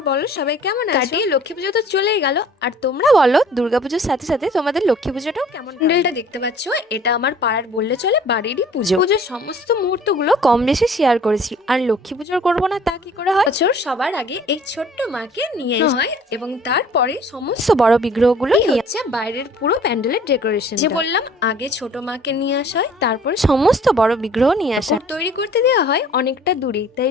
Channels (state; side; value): normal; both; correlation 0.52